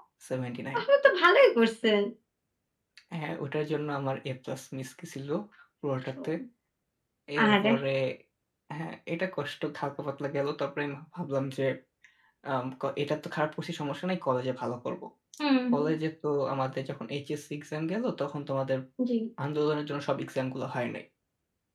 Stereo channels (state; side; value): identical; both; correlation 1.00